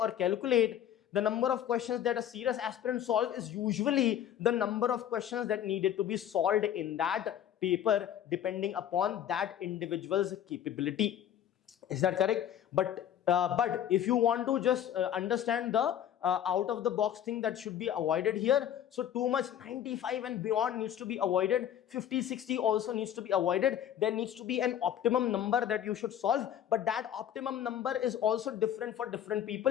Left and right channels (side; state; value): right; quieter; 10.4 dB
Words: calculate. The number of questions that a serious aspirant solves is usually the number of questions that needed to be solved in that paper, depending upon that individual's capability. Is that correct? But if you want to just understand the out of the box thing that should be avoided here, so too much 95 and beyond needs to be avoided. 50-60 also needs to be avoided. There needs to be an optimum number that you should solve, but that optimum number is also different for different